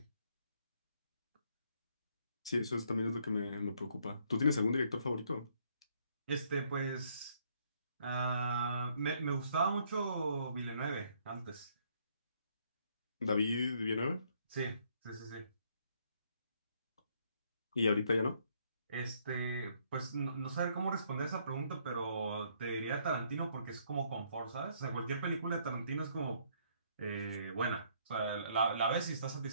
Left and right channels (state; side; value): inverted; both; correlation -0.68